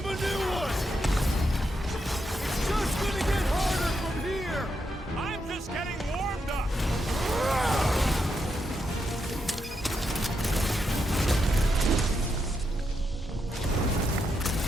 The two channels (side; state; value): both; normal; correlation 0.82